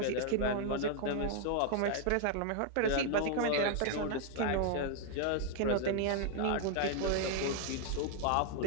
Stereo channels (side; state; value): both; different; correlation 0.00